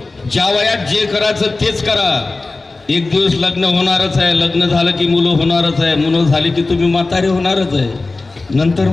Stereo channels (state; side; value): quieter; right; 3.4 dB